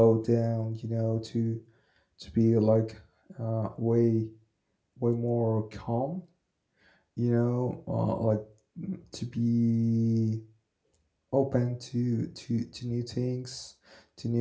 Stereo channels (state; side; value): identical; both; correlation 1.00